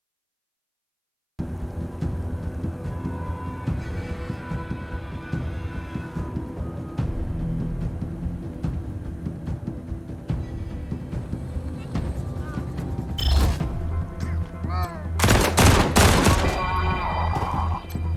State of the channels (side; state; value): both; identical; correlation 1.00